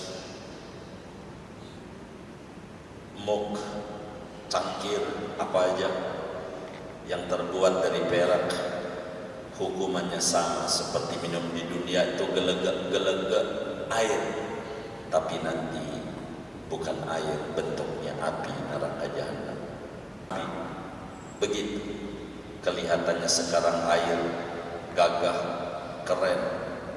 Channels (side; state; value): both; identical; correlation 1.00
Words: mug, cangkir, apa aja yang terbuat dari perak, hukumannya sama seperti minum di dunia itu gelegak air, tapi nanti bukan air, bentuknya api neraka jahanam. Begitu kelihatannya sekarang air gagah, keren,